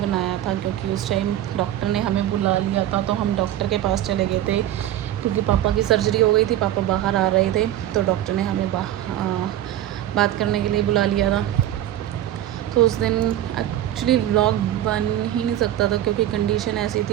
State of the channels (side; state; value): left; quieter; 12.6 dB